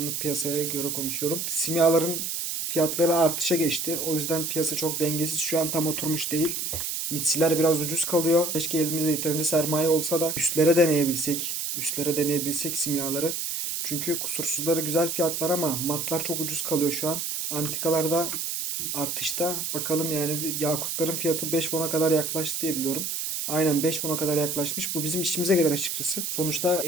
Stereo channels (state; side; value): noise; right; hiss, 3 dB below the sound